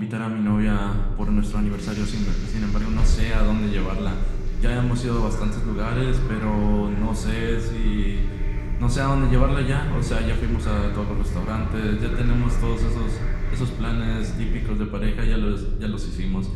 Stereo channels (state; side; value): identical; both; correlation 1.00